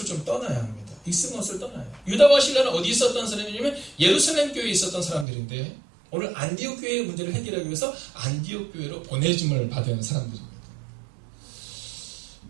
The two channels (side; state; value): left; drops out; at 5.2 s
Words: 좀 떠나야 합니다. 익숙한 것을 떠나요. 유다와 실라는 어디 있었던 사람이냐면 예루살렘 교회에 있었던 사람들인데 오늘 안디옥 교회의 문제를 해결하기 위해서 안디옥 교회로 보내짐을 받은 사람들입니다.